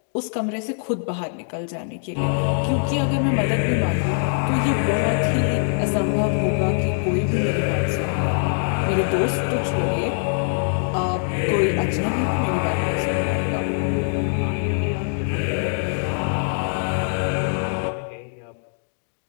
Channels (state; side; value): silent; right; 64 dB below the other